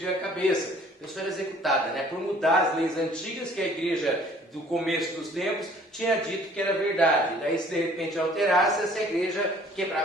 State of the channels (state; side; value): normal; both; correlation 0.55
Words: a cabeça. A pessoa era executada, né? Por mudar as leis antigas que a igreja do começo dos tempos tinha dito que era verdade. Daí, se de repente alterasse, essa igreja